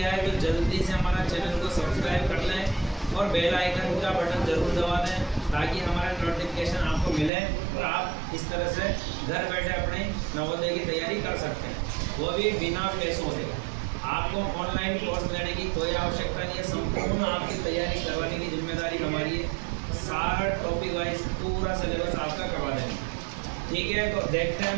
है तो जल्दी से हमारा चैनल को सब्सक्राइब कर लें और बेल आइकन का बटन जरूर दबा दें ताकि हमारा नोटिफिकेशन आपको मिले और आप इस तरह से घर बैठे अपने नवोदय की तैयारी कर सकते हैं, वो भी बिना पैसों के। आपको ऑनलाइन कोर्स लेने की कोई आवश्यकता नहीं है, संपूर्ण आपकी तैयारी करवाने की जिम्मेदारी हमारी है। सारा टॉपिक वाइज पूरा सिलेबस आपका करवा देंगे, ठीक है। तो देखते हैं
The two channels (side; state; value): left; drops out; at 7.3 s